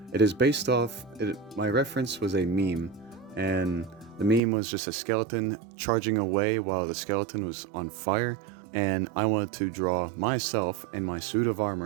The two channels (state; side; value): drops out; left; at 4.4 s